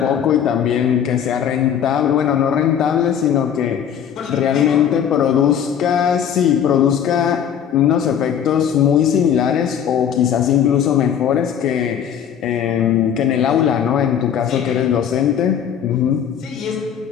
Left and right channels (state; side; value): quieter; right; 8.8 dB